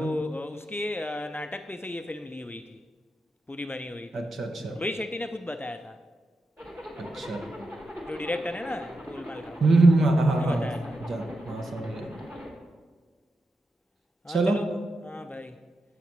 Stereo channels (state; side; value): normal; both; correlation 0.87